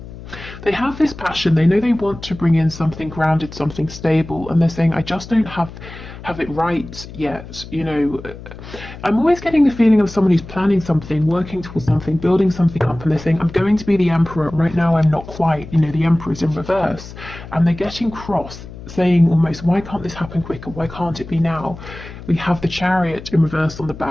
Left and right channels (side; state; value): left; noise; hum, 14 dB below the sound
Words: They have this passion, they know they want to bring in something grounded, something stable, and they're saying, I just don't have it right yet. You know, I'm always getting the feeling of someone who's planning something, working towards something, building something up, and they're saying, I'm going to be the Emperor. Right now I'm not quite. You know, the Emperor's in reverse. And they're getting cross, saying almost, why can't this happen quicker? Why can't it be now? We have the Chariot in reverse on the